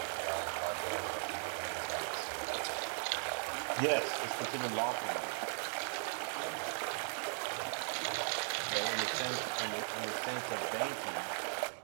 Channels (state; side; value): silent; left; digital silence